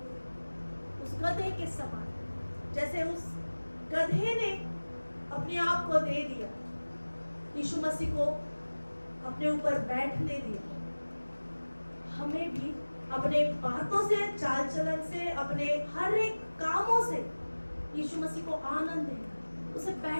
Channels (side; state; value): both; inverted; correlation -1.00